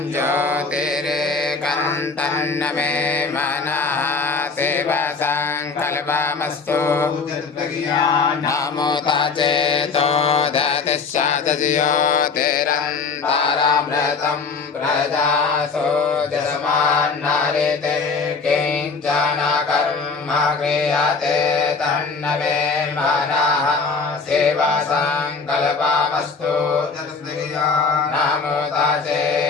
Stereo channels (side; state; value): right; quieter; 4.7 dB